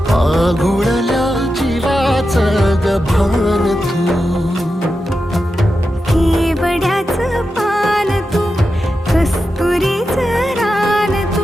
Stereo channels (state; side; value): normal; both; correlation 0.90